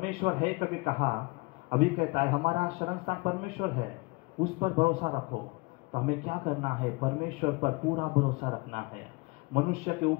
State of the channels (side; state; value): right; quieter; 26.8 dB